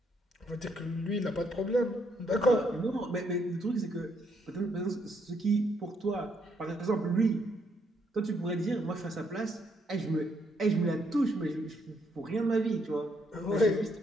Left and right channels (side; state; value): both; normal; correlation 0.73